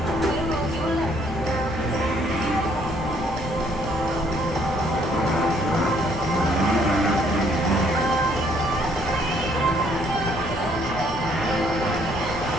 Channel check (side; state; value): both; normal; correlation 0.65